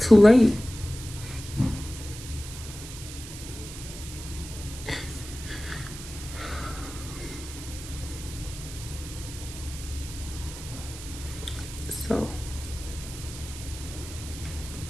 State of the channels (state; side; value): noise; right; hiss, 12 dB below the sound